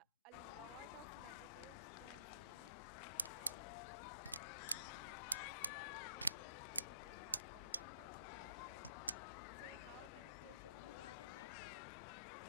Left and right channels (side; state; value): both; inverted; correlation -0.61